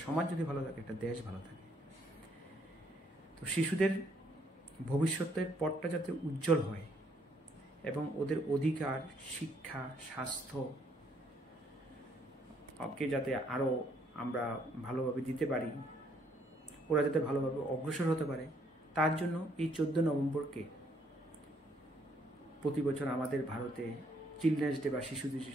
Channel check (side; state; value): both; normal; correlation 0.68